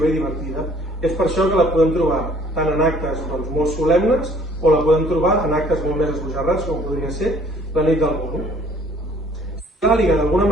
i divertida. És per això que la podem trobar tant en actes molt solemnes o la podem trobar en actes molt més esbojarrats, com podria ser la nit del Bolo. L'àliga d'alguna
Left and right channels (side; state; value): both; normal; correlation 0.57